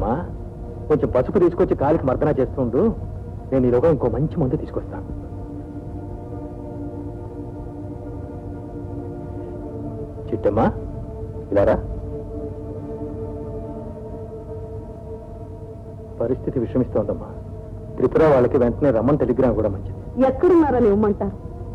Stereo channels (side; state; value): both; identical; correlation 1.00